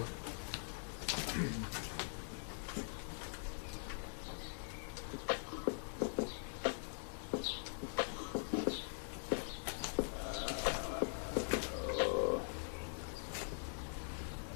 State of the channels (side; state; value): right; silent; digital silence